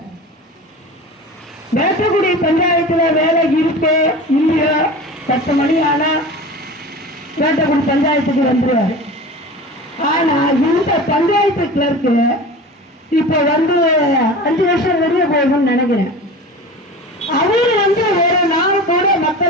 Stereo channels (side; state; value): both; normal; correlation 0.34